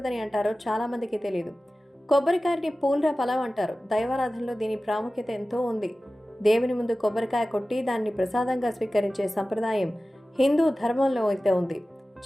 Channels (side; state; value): both; normal; correlation 0.96